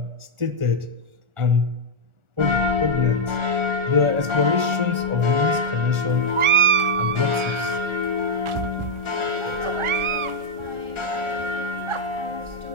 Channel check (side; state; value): left; late; 1.4 ms